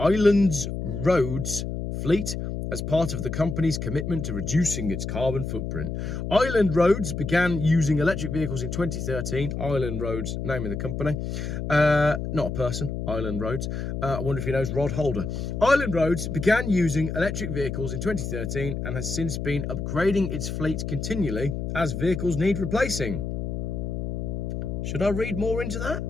roads fleet as part of the company's commitment to reducing its carbon footprint. Island Roads began using electric vehicles in 2013. Island Roads, name of the company. Not a person, Island Roads. I wonder if he knows Rod Holder. Island Roads began using electric vehicles in 2013 and has since been upgrading its fleet continually as vehicles need replacing. Should I read more into that?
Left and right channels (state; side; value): noise; left; hum, 4 dB below the sound